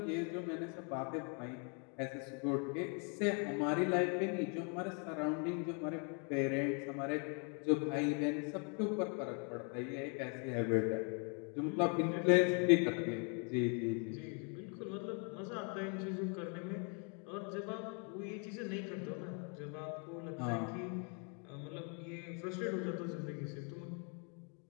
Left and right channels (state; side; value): quieter; right; 38.2 dB